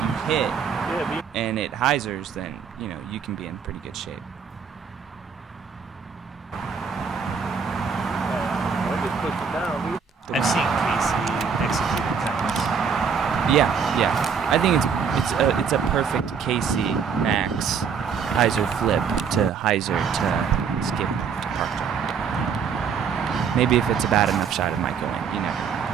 hit and it hyzers, then you know you can be in pretty good shape. I've seen Casey execute it cuts. Yeah. I think it's a perfect Casey Max hyzer flip to hyzer to skip to park jump. Maybe if it's a bad enough shot, it might go in. You never know.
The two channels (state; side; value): quieter; left; 6.3 dB